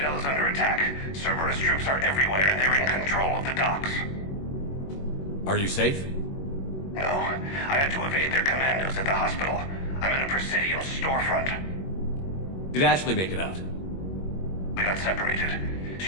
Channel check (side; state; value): right; late; 21 ms